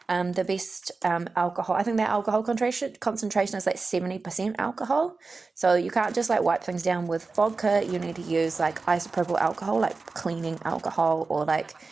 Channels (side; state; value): left; quieter; 4.0 dB